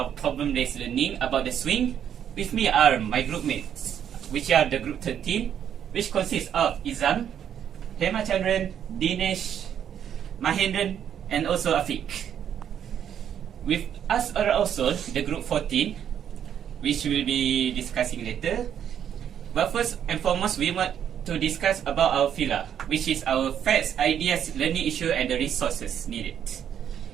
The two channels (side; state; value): left; quieter; 9.2 dB